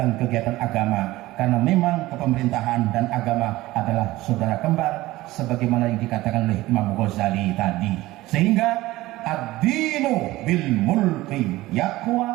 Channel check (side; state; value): left; quieter; 17.9 dB